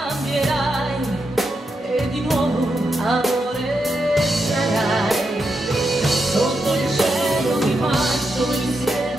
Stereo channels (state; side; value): normal; both; correlation 0.85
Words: e di nuovo amore sarai. Sotto il cielo di maggio